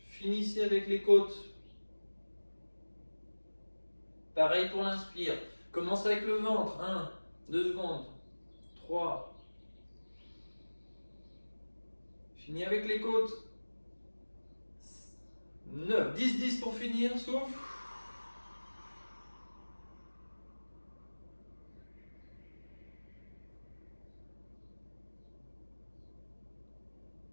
Finissez avec les côtes. Pareil pour l'inspire. Commencez avec le ventre. 1, 2 secondes. 3. Finis avec les côtes. 9. 10, 10 pour finir. Souffle.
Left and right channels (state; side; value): inverted; both; correlation -1.00